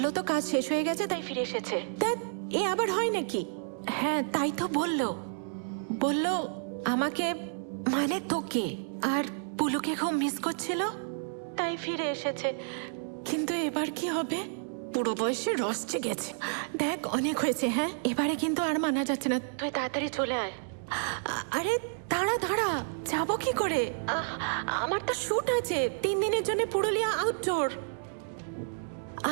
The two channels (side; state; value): left; silent; digital silence